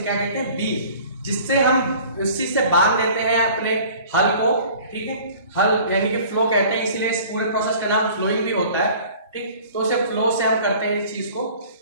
क्या कहते हैं? बीम, जिससे हम उसी से बांध देते हैं अपने हल को, ठीक है। हल यानी कि फ्लो कहते हैं, इसीलिए इस पूरे प्रोसेस का नाम फ्लोइंग भी होता है, ठीक। तो उसे फ्लो से हम करते हैं इस चीज को।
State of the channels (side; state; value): both; inverted; correlation -0.47